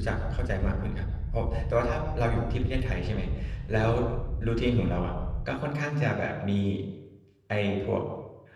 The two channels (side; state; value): both; identical; correlation 1.00